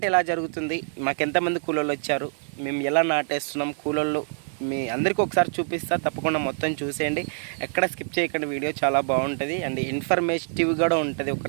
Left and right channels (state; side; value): silent; left; digital silence